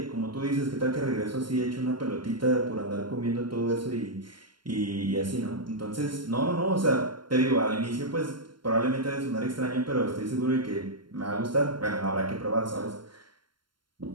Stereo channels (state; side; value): late; left; 0.72 ms